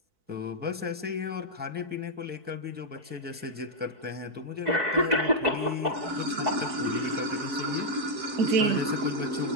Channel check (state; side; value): late; left; 4.6 ms